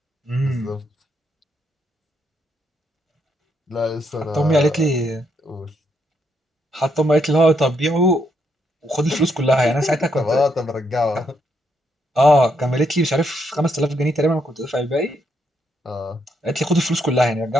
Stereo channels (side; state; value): both; normal; correlation 0.76